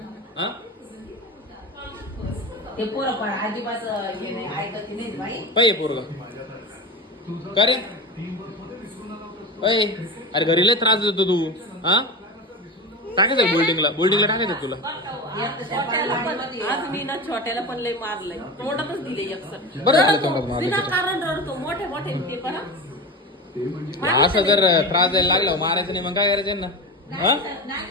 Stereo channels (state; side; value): normal; both; correlation 0.26